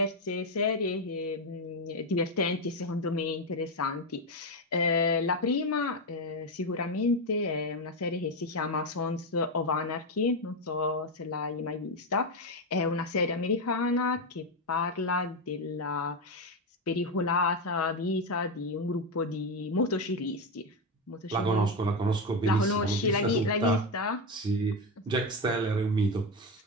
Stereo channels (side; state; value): both; normal; correlation 0.11